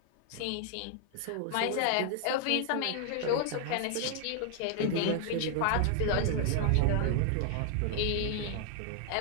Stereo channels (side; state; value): both; different; correlation 0.00